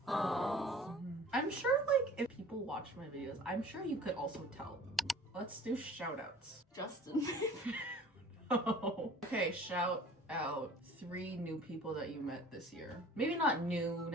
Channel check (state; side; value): normal; both; correlation 0.47